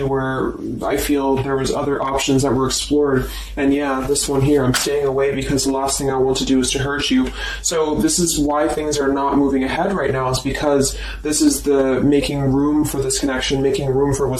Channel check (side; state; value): both; identical; correlation 1.00